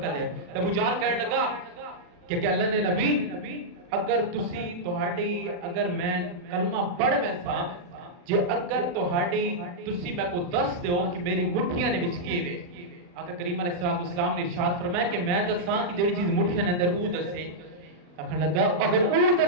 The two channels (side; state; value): left; late; 40 ms